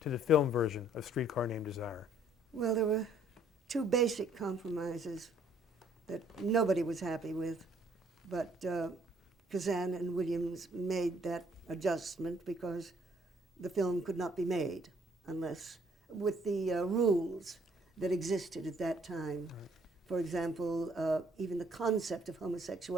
to the film version of Streetcar Named Desire? Well, there were two basic compromises that nobody was happy with, but Kazan and Williams made that adjustment because the film could not be made unless with the rules that existed at that time. Right. For example, even the concept of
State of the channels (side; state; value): both; normal; correlation 0.63